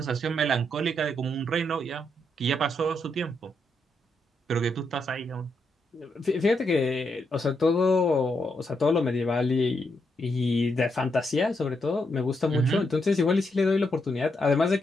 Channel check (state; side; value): normal; both; correlation 0.80